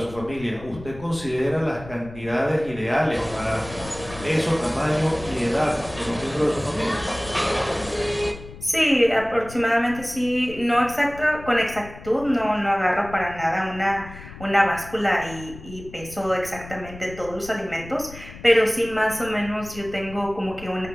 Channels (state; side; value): noise; left; rumble, 16 dB below the sound